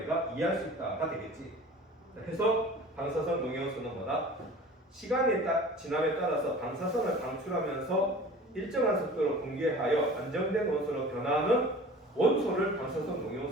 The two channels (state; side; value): normal; both; correlation 0.42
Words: 이해할 수 있다가 되겠지. 그래서 방사선 동위원소는 뭐다? 시간이 지남에 따라서 방사선을 방출하면서 일정한 속도로 분개하여 안정된 원소로 변하는 원소를 방사선